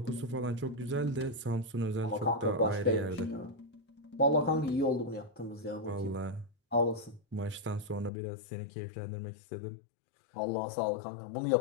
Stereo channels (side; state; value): right; drops out; at 8.1 s